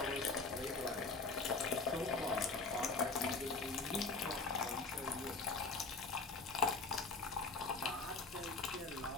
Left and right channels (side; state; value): right; quieter; 4.0 dB